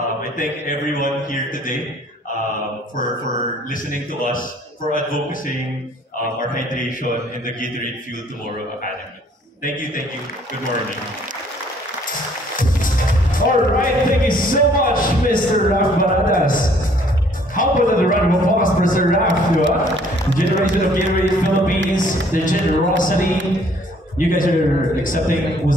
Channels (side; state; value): both; normal; correlation 0.60